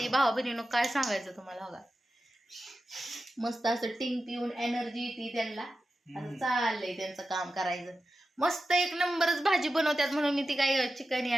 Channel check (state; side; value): normal; both; correlation 0.92